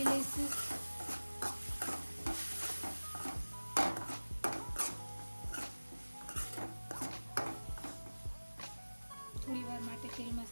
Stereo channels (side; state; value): both; inverted; correlation -1.00